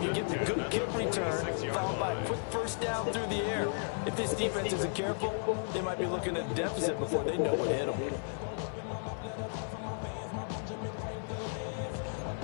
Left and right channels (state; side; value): silent; right; 55 dB below the other